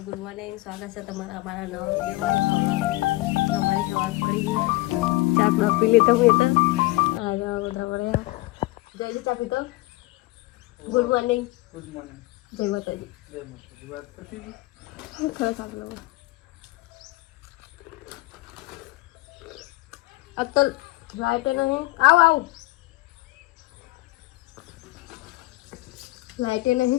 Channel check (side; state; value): right; quieter; 20.8 dB